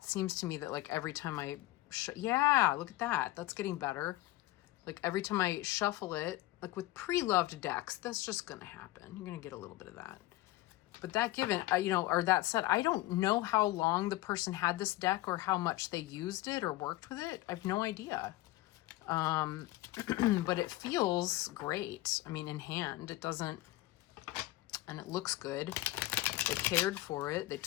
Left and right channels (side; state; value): right; quieter; 17.7 dB